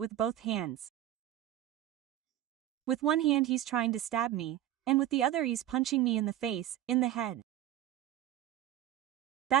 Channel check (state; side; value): quieter; left; 12.6 dB